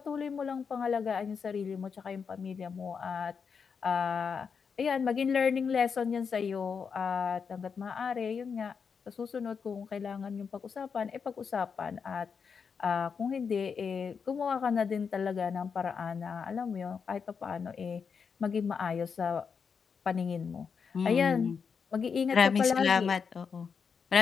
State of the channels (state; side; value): quieter; right; 6.0 dB